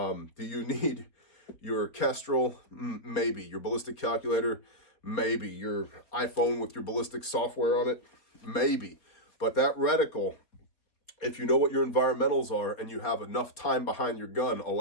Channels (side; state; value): right; late; 4.3 ms